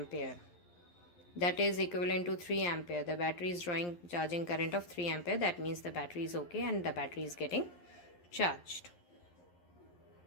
That is equivalent to 3 ampere. The battery is drawing charging current of 3 ampere. That means the battery is okay and the battery is getting charged.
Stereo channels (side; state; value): right; late; 11 ms